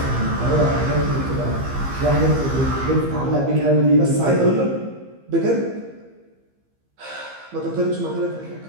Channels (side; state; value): left; late; 15 ms